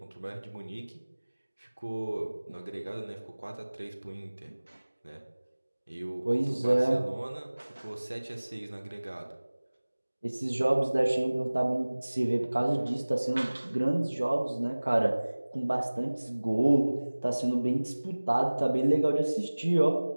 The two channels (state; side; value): inverted; both; correlation -1.00